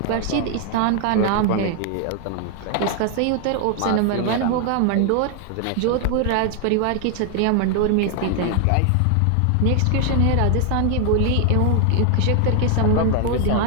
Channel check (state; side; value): different; both; correlation 0.00